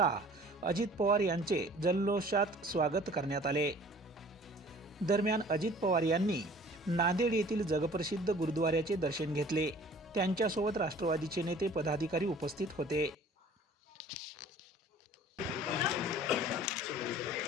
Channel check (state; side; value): normal; both; correlation 0.49